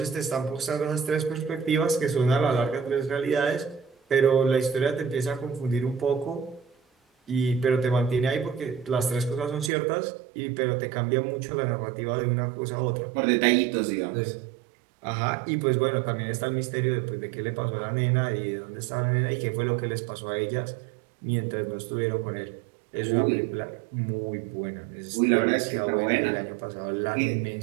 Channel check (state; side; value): drops out; left; at 9.7 s